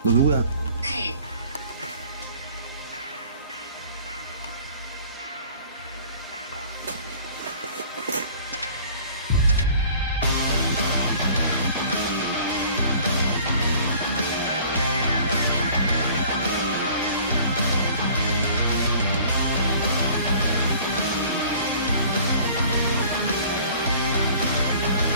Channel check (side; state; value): both; inverted; correlation -0.50